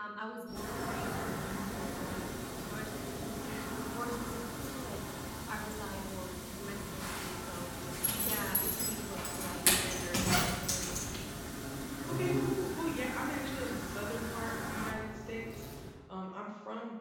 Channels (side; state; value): both; identical; correlation 1.00